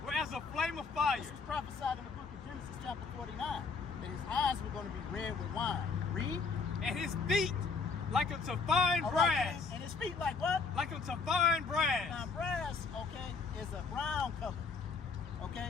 were as a flame of fire. This was prophesied in the book of Genesis chapter 49. That his eyes were going to be red with wine. Read. And his feet like unto fine brass. And his feet like what? Like unto fine brass. Now brass, okay, is a brown color.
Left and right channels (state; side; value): quieter; right; 4.8 dB